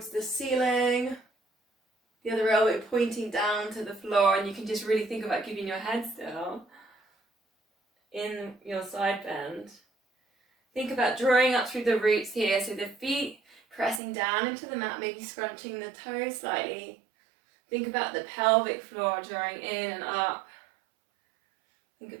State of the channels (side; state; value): left; drops out; at 14.0 s